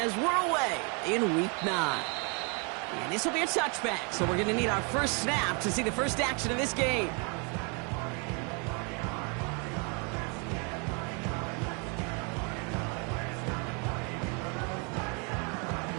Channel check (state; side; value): quieter; left; 34.6 dB